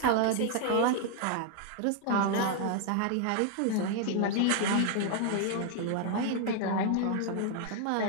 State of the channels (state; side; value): different; both; correlation 0.00